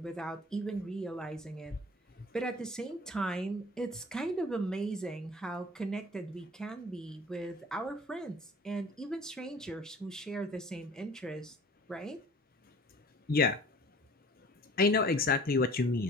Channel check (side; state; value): both; normal; correlation 0.47